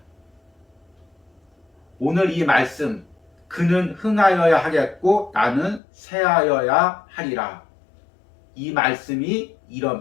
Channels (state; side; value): drops out; right; at 5.8 s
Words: 오늘 이 말씀, 그는 흥하여야 하겠고 나는 쇠하여야 하리라. 이 말씀이